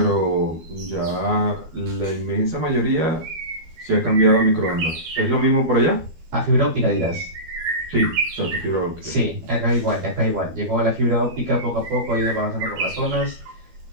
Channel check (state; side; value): late; left; 12 ms